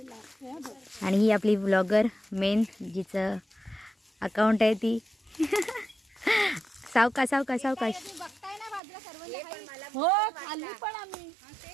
आणि ही आपली ब्लॉगर मेन जिचं अकाउंट आहे ती सावकाश सावकाश सावकाश. हो खाल्ली पण आम्ही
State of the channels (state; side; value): drops out; left; at 8.8 s